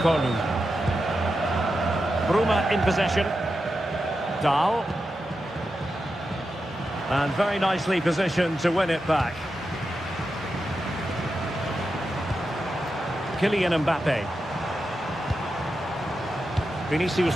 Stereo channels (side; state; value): both; normal; correlation 0.89